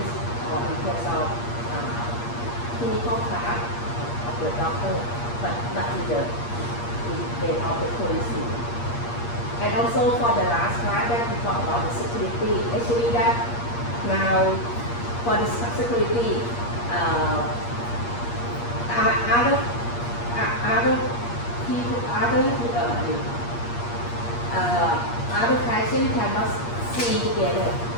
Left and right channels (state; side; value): late; right; 8.5 ms